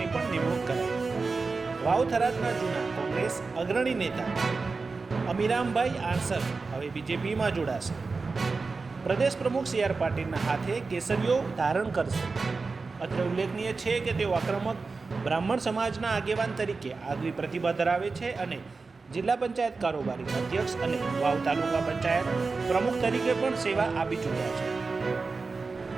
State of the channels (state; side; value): quieter; left; 4.2 dB